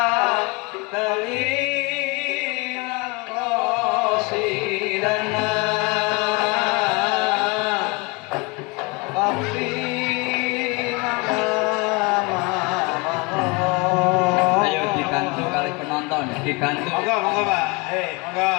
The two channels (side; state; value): right; quieter; 27.0 dB